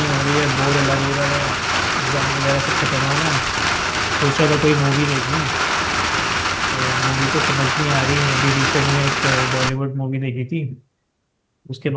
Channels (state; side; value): identical; both; correlation 1.00